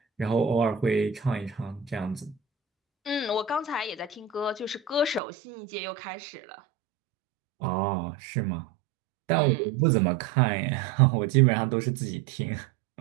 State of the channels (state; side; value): drops out; left; at 5.2 s